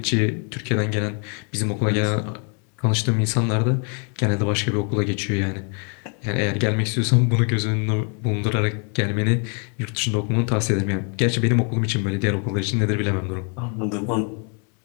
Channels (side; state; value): right; quieter; 39.8 dB